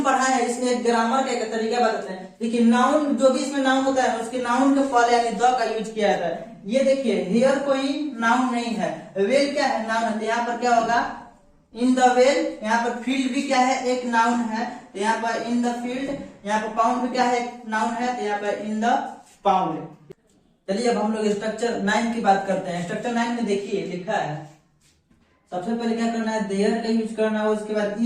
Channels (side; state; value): both; identical; correlation 1.00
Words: पढ़ा है इसमें एक ग्रामर का एक तरीका बताते हैं। देखिए नाउन, जो भी इसमें नाउन होता है उसके नाउन के पहले यानी द का यूज किया जाता है। ये देखिए हेयर कोई नाउन नहीं है, वेल क्या है, नाउन है। तो यहाँ पर क्या होगा, इन द वेल, यहाँ पर फील्ड भी क्या है, एक नाउन है, तो यहाँ पर इन द फील्ड। यहाँ पर पाउंड भी क्या है, एक नाउन है, तो यहाँ पर इन द पाउंड। चलिए अब हम लोग स्ट्रक्चर 9 की बात करते हैं। स्ट्रक्चर 9 में देखिए लिखा है, सबसे पहले क्या करना है, देयर का यूज करना है, उसके बाद